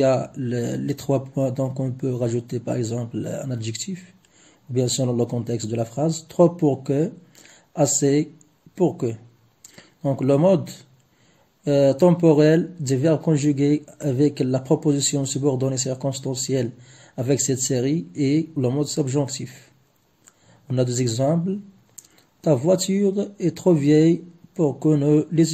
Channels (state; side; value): identical; both; correlation 1.00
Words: a les 3 points, donc on peut rajouter par exemple un adjectif, ou bien selon le contexte de la phrase, trop pour que, assez pour que. Donc le mode temporel des verbes conjugués avec la proposition subordonnée circonstancielle avec cette série et le mode subjonctif. On a des exemples. Ta voiture est trop vieille pour que nous